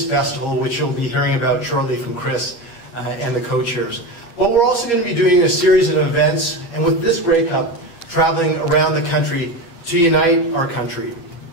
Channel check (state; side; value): late; right; 8.5 ms